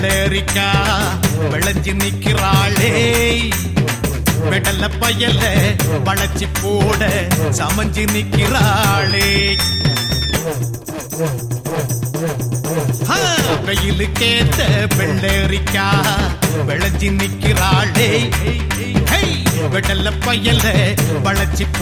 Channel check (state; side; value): identical; both; correlation 1.00